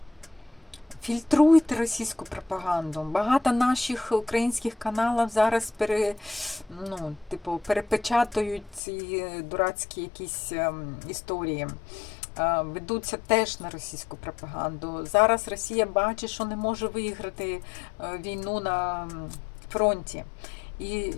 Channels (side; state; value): right; drops out; at 8.8 s